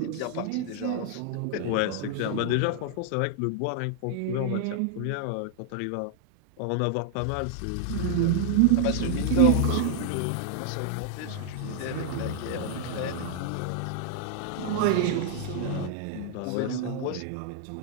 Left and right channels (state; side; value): different; both; correlation 0.00